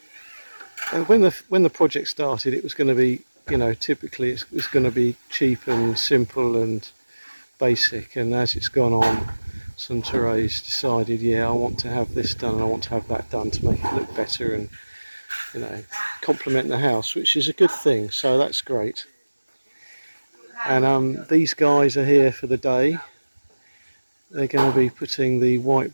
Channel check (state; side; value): inverted; both; correlation -1.00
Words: And when the project started, it was going to be, you know, typically it's going to be cheap and simple and basic. And as it's gone on, Suntore's decided, yeah, I want to have this done and I want to have that done to make it look better and, you know, complement the house, which is a good thing. So that's great. And these guys are here for the day. They're going to be putting the white